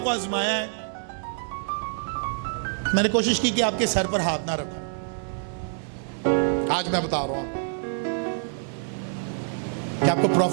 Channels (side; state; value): left; silent; 60 dB below the other